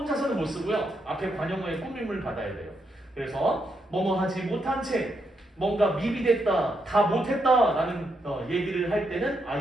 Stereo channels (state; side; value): normal; both; correlation 0.80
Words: 못 쓰고요. 앞에 관형어의 꾸밈을 받아야 돼요. 그래서 뭐뭐 하지 못한 채 뭔가 미비됐다, 다 못했다 라는 얘기를 할 때는